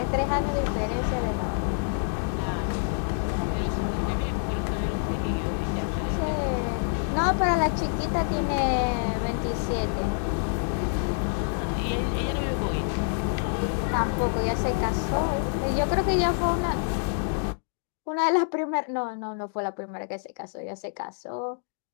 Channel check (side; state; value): right; silent; digital silence